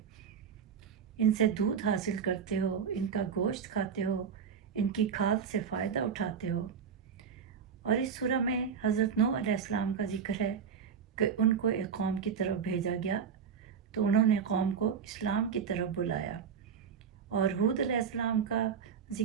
ان سے دودھ حاصل کرتے ہو، ان کا گوشت کھاتے ہو، ان کی کھاد سے فائدہ اٹھاتے ہو۔ اور اس سورہ میں حضرت نوح علیہ السلام کا ذکر ہے کہ ان کو ایک قوم کی طرف بھیجا گیا تو انہوں نے قوم کو اسلام کی طرف بلایا۔ اور ہود علیہ السلام کا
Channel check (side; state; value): left; quieter; 6.9 dB